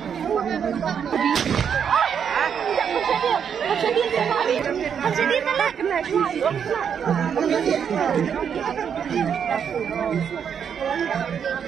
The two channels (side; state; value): left; quieter; 7.6 dB